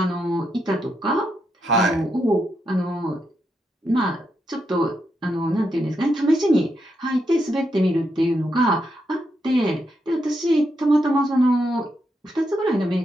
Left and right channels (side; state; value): both; normal; correlation 0.82